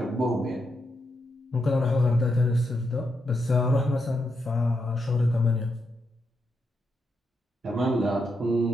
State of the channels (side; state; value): both; normal; correlation 0.82